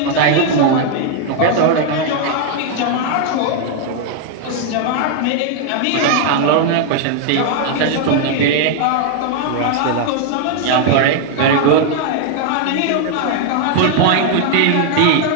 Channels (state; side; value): different; both; correlation 0.00